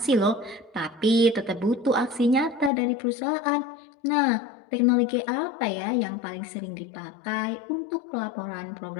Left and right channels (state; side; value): drops out; right; at 2.7 s